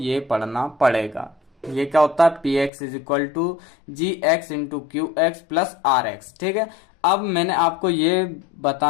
पढ़ना पड़ेगा। ये क्या होता है, p x is equal to g x into q x plus r x. ठीक है, अब मैंने आपको ये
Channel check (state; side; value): drops out; right; at 2.7 s